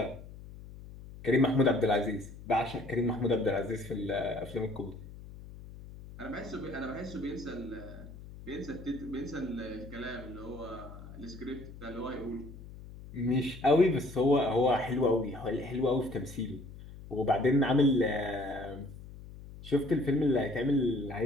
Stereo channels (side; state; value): left; noise; hum, 15 dB below the sound